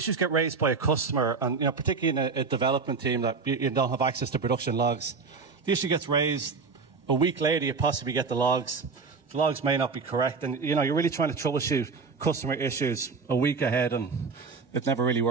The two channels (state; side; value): quieter; left; 4.8 dB